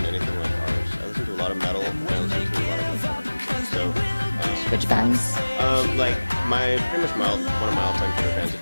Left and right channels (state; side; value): inverted; both; correlation -1.00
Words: anything like ours. I listen to a lot of metal, and I listen to a lot of electronic music. So, which bands? Pretty much one of my all-time favorite bands,